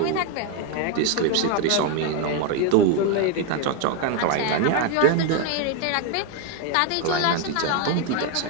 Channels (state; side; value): different; both; correlation 0.01